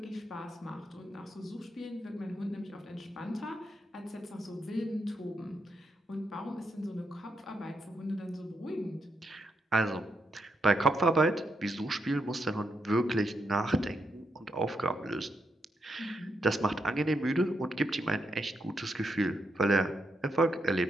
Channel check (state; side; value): normal; both; correlation 0.81